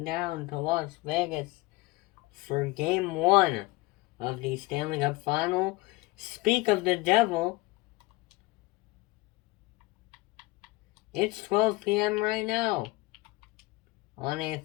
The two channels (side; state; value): right; quieter; 21.6 dB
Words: down to Las Vegas for Game 1 of the Stanley Cup Final. Speak of the devil, it's 12 p.m. right now on a